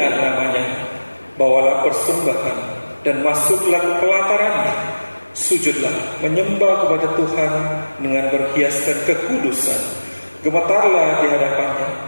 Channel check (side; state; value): both; inverted; correlation -1.00